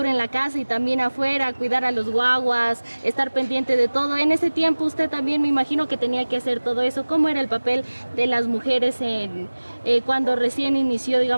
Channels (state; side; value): inverted; both; correlation -1.00